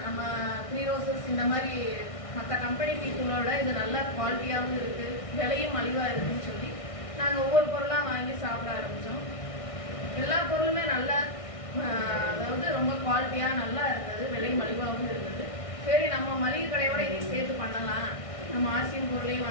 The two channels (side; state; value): right; late; 1.6 ms